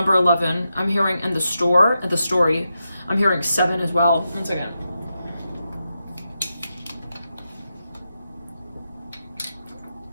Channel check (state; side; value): inverted; both; correlation -0.88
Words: 11. I'm hearing in the story. I'm hearing 7 as well. 1 second.